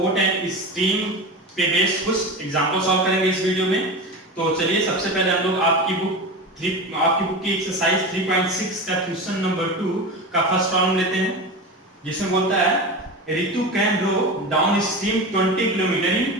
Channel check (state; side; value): normal; both; correlation 0.26